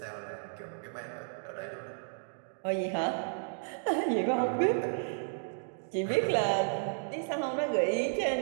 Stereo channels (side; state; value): left; silent; digital silence